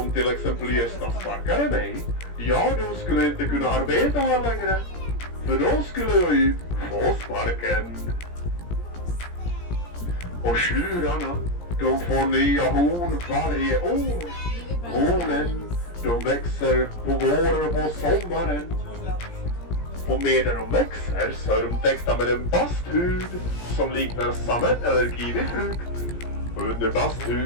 till exempel Gösta sparkade mig, ja då skulle jag inte kunna arbeta här längre. För då skulle jag ju få sparken. Och tjurarna, de får nya horn varje år. Hornen, de växer på våren och på sommaren. Och medan de växer så är de täckta med en basthud som liknar sammet eller kiwifrukt. Under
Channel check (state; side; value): late; right; 17 ms